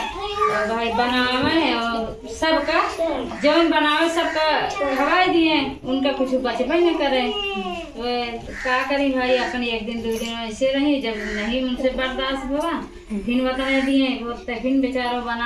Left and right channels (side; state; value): both; identical; correlation 1.00